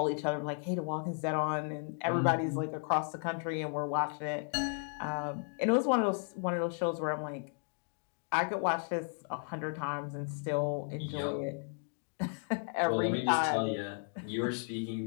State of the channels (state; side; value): silent; right; 55 dB below the other